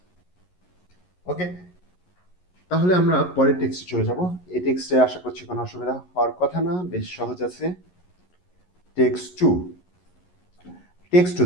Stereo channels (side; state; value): right; late; 11 ms